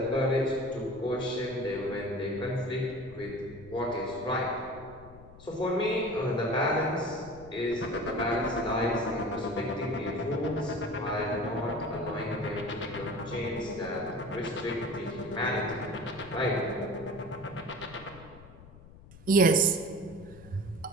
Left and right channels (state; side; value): noise; left; rumble, 19 dB below the sound